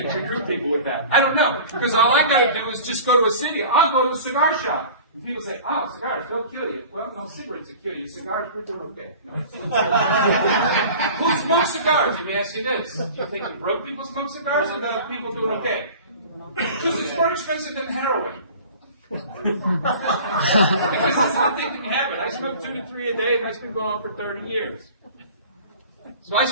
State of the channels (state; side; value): inverted; both; correlation -0.41